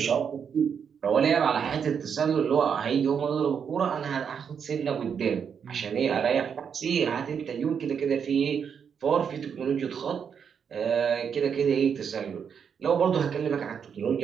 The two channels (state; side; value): quieter; left; 7.1 dB